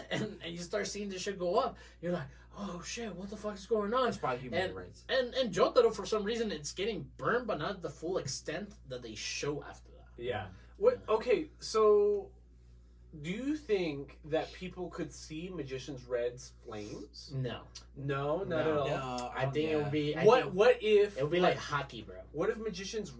And you start seeing this shit go up. You're like, oh shit, what the fuck is going on? It's probably human rights. And Jotaro, for some reason, it's getting burned, but not the full extent that they show after that. Yeah. What? Okay, so do you think that people could see Magician's Red's flames? No. No, not at all. No, I think it would be... What if... It would be like hockey, bro. What if Magician's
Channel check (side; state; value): both; identical; correlation 1.00